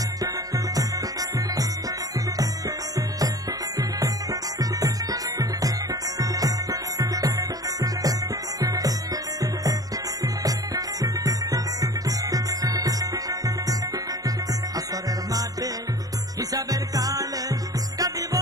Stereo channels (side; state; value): left; late; 0.18 ms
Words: আসরের মাঠে হিসাবের কালে কাঁদিব